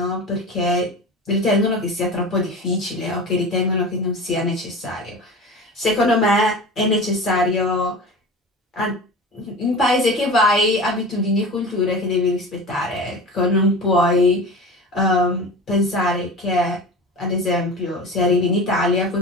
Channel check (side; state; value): both; normal; correlation 0.33